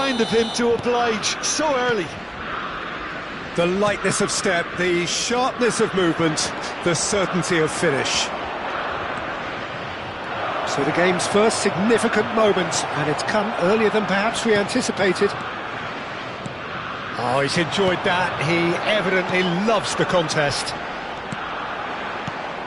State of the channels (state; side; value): identical; both; correlation 1.00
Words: of him to oblige so early. The lightness of step, the sharpness of movement, the certainty of finish. So the game's first significant moment, and it's come earlier than perhaps we anticipated. Oh, he's enjoyed that. He evidently loves the contest.